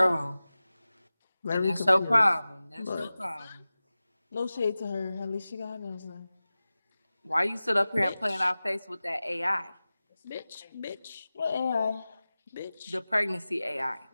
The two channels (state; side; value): inverted; both; correlation -0.97